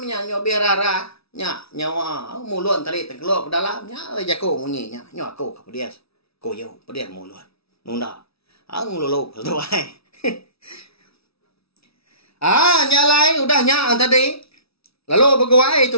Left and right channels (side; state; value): right; late; 0.77 ms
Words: nya nyobias rara. Nyawa mulut tadi terkeluar ke dalamnya jago munyinya nyawa aku ke dia ko yo dia mulut nunda ang lulu tuai Nyalai udah nyak tadi. Lalu begawai itu